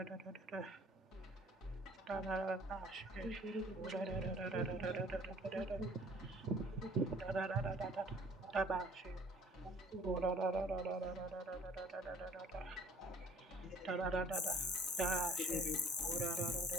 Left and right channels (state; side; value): normal; both; correlation 0.53